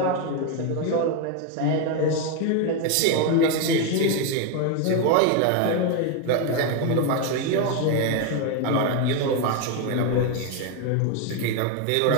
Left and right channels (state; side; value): different; both; correlation 0.02